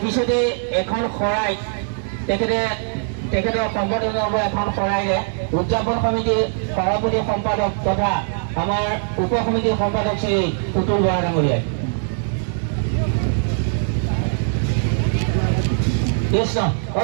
পিছতে এখন শৰাই তেখেতৰ সম্পাদনৰ এখন শৰাইৰে উদযাপন সমিতিৰ সভাপতি সম্পাদক তথা আমাৰ উপ সমিতিৰ সম্পাদক শ্ৰী পুতুল বৰা ডাঙৰীয়াই। কৃষ্ণ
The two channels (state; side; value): silent; left; 65 dB below the other